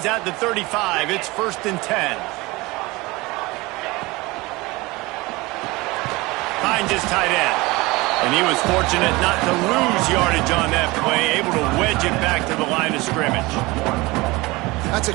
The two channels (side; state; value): left; quieter; 22.3 dB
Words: at the 35. It's first and 10. Finds his tight end. And he was fortunate not to lose yardage on that play, able to wedge it back to the line of scrimmage. That's